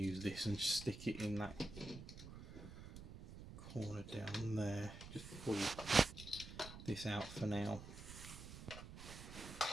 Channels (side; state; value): right; noise; rumble, 12 dB below the sound